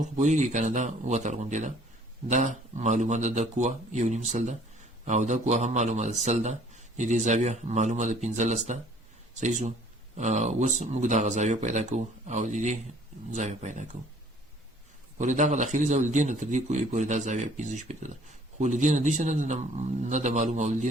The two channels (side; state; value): both; normal; correlation 0.56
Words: خو پوهیږي کنه دا وتر غونډه ده، دا معلومه ده د کوه یو نیم سل ده او دا کوه هم معلومه ده سل ده، د دې زاویه معلومه ده 15 ده. صحیح شو؟ اوس موږ دا زاویه پیدا کوو او د دې زاویه پیدا کوو. پورې دا داخلي زاویه دې نه تر دې کوی پورې دا زاویه 15 ده، خو لدې نه دې نه د معلومه او دې